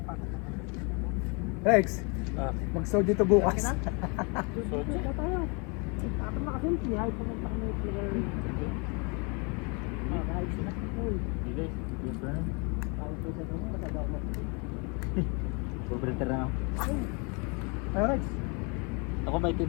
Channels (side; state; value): right; quieter; 32.6 dB